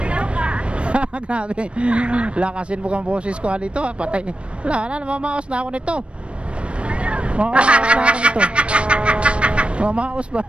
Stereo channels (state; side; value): late; left; 0.059 ms